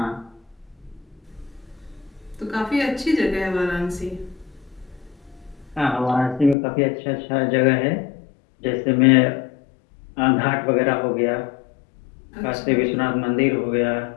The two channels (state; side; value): drops out; right; at 6.6 s